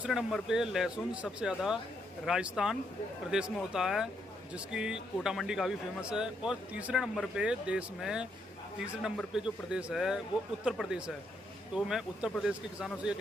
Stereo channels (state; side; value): normal; both; correlation 0.76